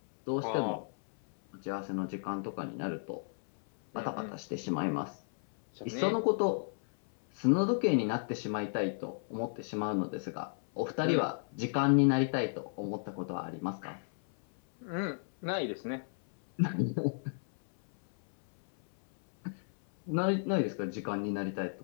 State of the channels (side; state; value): right; silent; 55 dB below the other